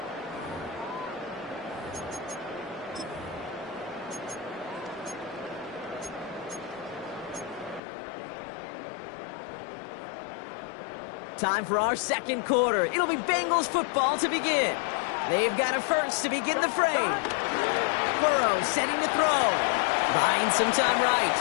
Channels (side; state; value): right; drops out; at 7.8 s